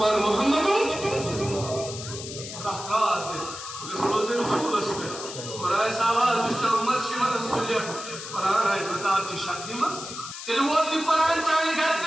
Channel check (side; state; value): left; noise; hiss, 10 dB below the sound